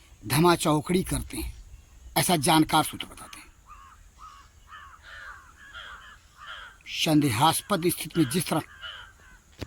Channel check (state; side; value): identical; both; correlation 1.00